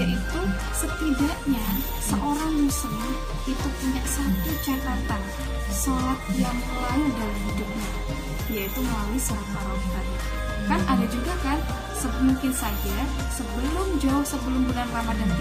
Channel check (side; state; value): both; identical; correlation 1.00